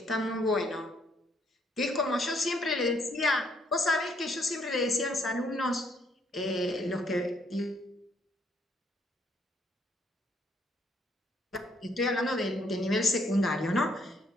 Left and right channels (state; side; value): normal; both; correlation 0.69